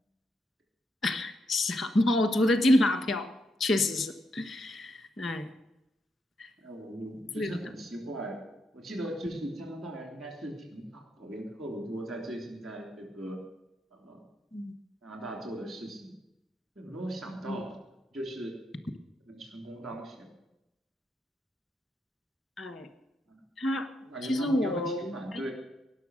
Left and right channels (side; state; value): both; normal; correlation 0.80